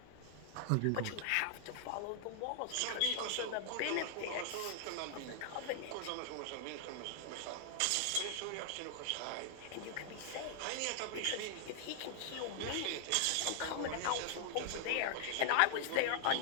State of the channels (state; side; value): different; both; correlation 0.00